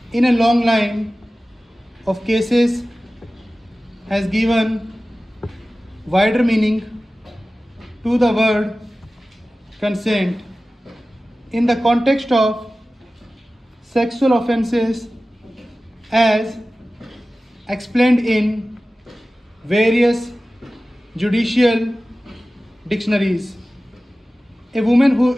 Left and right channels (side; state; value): both; normal; correlation 0.96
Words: in a long line of cases, has given wider meaning to the word consent in the context of sexual offences as explained in various judicial dictionaries. A woman who